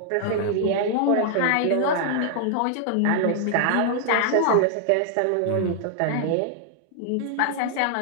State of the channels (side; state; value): both; different; correlation 0.00